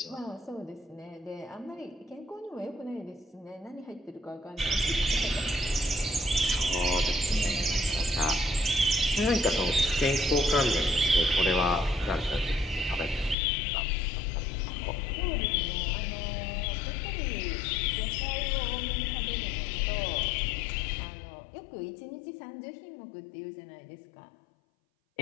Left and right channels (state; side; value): drops out; right; at 13.4 s